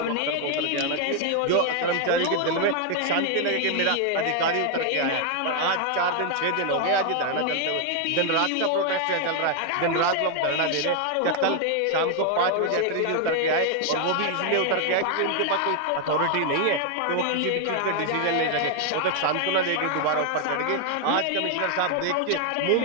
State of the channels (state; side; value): different; both; correlation 0.00